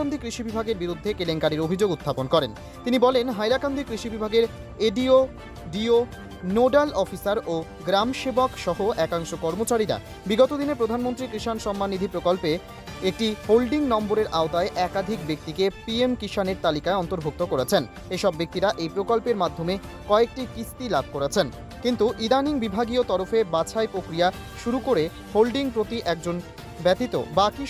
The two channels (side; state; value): both; identical; correlation 1.00